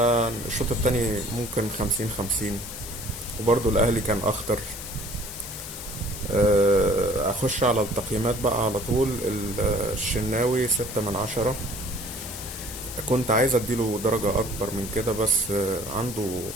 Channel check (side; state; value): left; noise; hiss, 11 dB below the sound